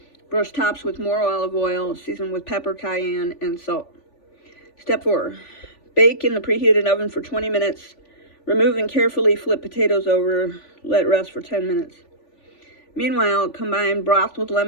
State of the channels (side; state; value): right; late; 3.4 ms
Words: Brush tops with more olive oil, season with pepper, cayenne, and salt. Step 4. Bake in the preheated oven for 20 minutes. Remove and carefully flip potatoes over. Let rest for 10 minutes. Meanwhile, combine broth with